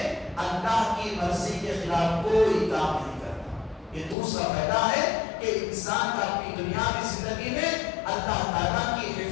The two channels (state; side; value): drops out; right; at 4.2 s